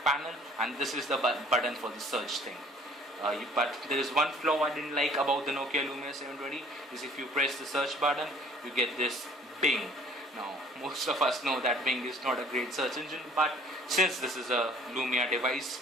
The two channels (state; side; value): normal; both; correlation 0.54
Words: panel, and this is the button for the search thing. But there is one flaw I didn't like about the Nokia Lumia 720, is if you press the search button, you get this Bing. Now most of us know that Bing is not a great search engine, but since this is a Lumia